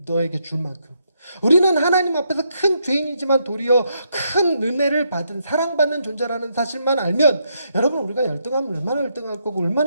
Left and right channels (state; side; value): inverted; both; correlation -0.78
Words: 너에게 줄 만큼. 우리는 하나님 앞에서 큰 죄인이지만 도리어 큰 은혜를 받은 사랑받는 존재라는 사실만 알면 여러분 우리가 열등하면 얼마나 열등할 거고